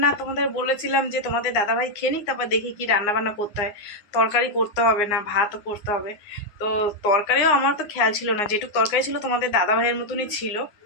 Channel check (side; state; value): right; late; 9.7 ms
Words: তোমাদের বলেছিলাম যে তোমাদের দাদাভাই খেয়ে নিক, তারপর দেখি কি রান্না বান্না করতে হয়। তরকারি করতে হবে না, ভাতও করতে হবে। তো তরকারিও আমার তো খেয়াল ছিল না, যেটুকু তরকারি ছিল তোমাদের দাদাভাইয়ের মতনই ছিল,